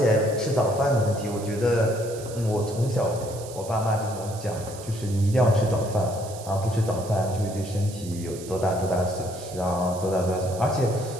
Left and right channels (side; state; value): right; noise; hiss, 16 dB below the sound